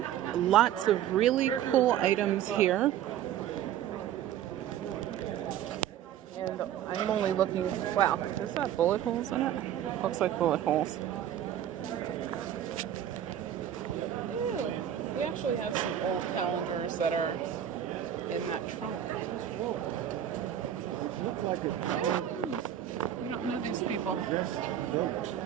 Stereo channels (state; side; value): quieter; left; 10.7 dB